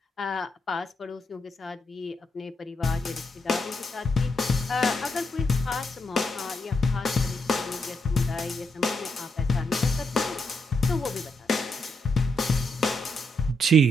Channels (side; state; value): both; normal; correlation 0.80